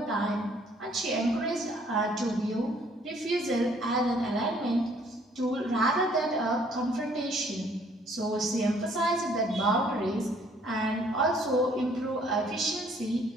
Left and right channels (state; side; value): normal; both; correlation 0.61